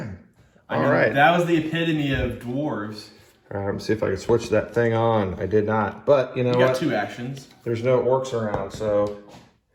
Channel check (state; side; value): identical; both; correlation 1.00